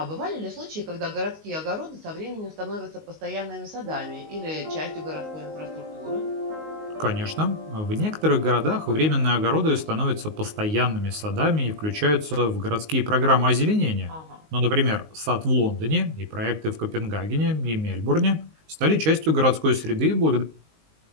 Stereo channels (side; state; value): left; late; 19 ms